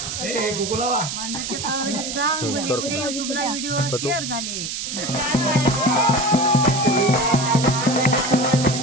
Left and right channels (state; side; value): noise; right; hiss, 5 dB below the sound